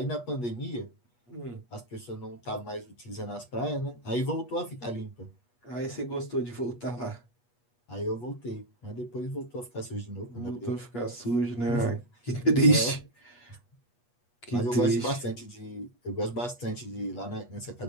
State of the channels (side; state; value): right; late; 8.3 ms